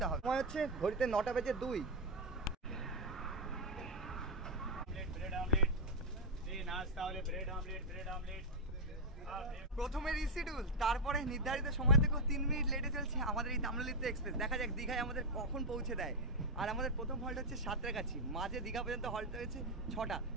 হবে। সময় হচ্ছে ঘড়িতে 9:02। ब्रेड ऑमलेट, नाश्ता वाले ब्रेड ऑमलेट, প্রথমে রিশিডিউল, তারপরে নির্ধারিত সময় থেকেও 3 মিনিট লেটে চলছে আমাদের এই তাম্রলিপ্ত এক্সপ্রেস। দেখা যাক দীঘায় আমাদের কখন পৌঁছে দেয়। আর আমাদের প্রথম হল্ট হচ্ছে সাঁতরাগাছি, মাঝে দীঘা পর্যন্ত হল্ট হয়েছে 6টা।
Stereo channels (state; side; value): normal; both; correlation 0.01